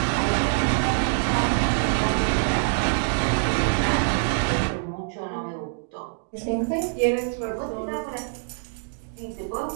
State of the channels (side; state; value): left; silent; digital silence